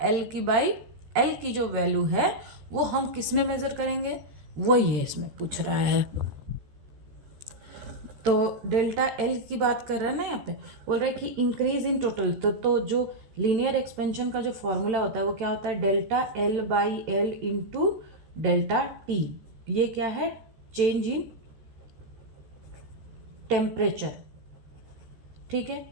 एल की बाई एल की जो वैल्यू है वो हम किस में मेजर करेंगे, वही है इसमें पूछ रहा है। तो डेल्टा एल की बात कर रहा है ना, यहाँ पे बोल रहा है कि इंक्रीज इन टोटल, तो जो लीनियर एक्सपेंशन का जो फॉर्मूला होता है वो क्या होता है, delta L by L into delta T. ये क्या है, चेंज इन टेम्परेचर। ठीक है।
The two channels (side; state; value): left; late; 14 ms